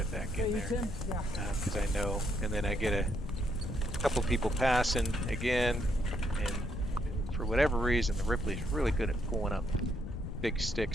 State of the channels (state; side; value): noise; left; rumble, 6 dB below the sound